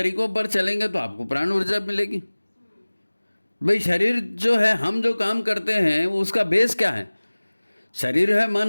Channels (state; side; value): inverted; both; correlation -1.00